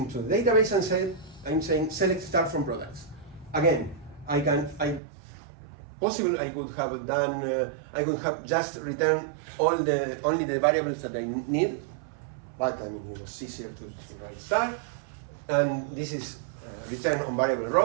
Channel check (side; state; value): left; drops out; at 5.0 s